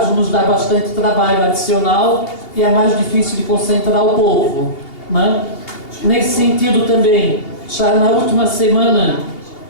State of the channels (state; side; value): late; right; 2.8 ms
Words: Nos dá bastante trabalho adicional e é mais difícil de concentrar o povo, né? Nesse sentido também, já na última semana,